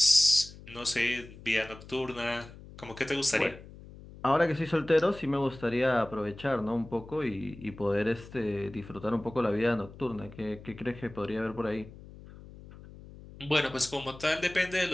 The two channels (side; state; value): left; noise; hum, 17 dB below the sound